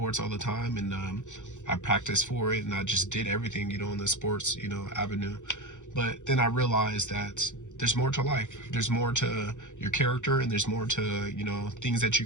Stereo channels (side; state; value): right; late; 0.85 ms